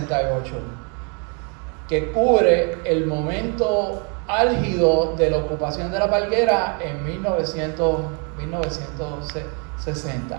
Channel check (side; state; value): left; quieter; 36.8 dB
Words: que cubre el momento álgido de la ocupación de La Palguera en 1960.